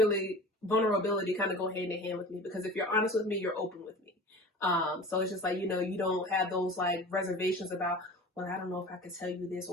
kind of go hand in hand with me, because if you're honest with me, you're open with me. So it's just you don't have those reservations about, well, I don't know if I could tell you this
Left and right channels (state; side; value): normal; both; correlation 0.38